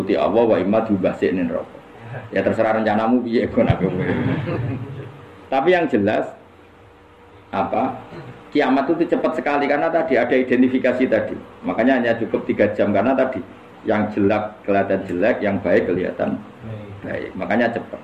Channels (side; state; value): both; identical; correlation 1.00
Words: Allah wa imma diubahsine neraka. Ya terserah rencanamu piye kon aku. Tapi yang jelas apa? Kiamat itu cepat sekali karena tadi ada identifikasi tadi. Makanya hanya cukup 3 jam karena tadi yang jelek kelihatan jelek, yang baik kelihatan baik. Makanya cepat.